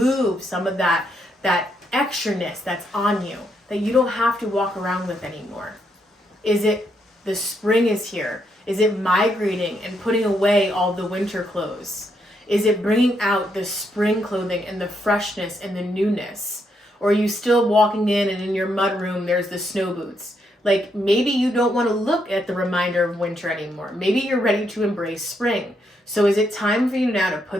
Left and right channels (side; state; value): both; normal; correlation 0.77